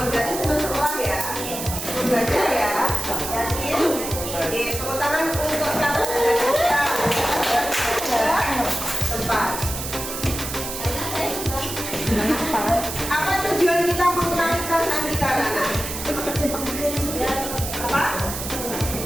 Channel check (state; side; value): noise; right; hiss, 6 dB below the sound